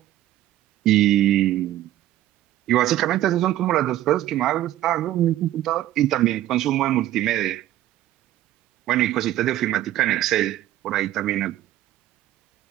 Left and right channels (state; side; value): quieter; left; 13.8 dB